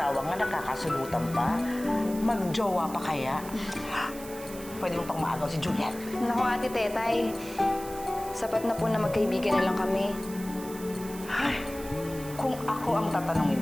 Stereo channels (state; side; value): noise; right; hiss, 15 dB below the sound